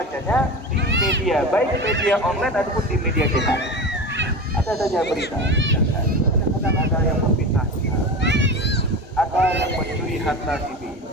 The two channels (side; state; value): both; normal; correlation 0.27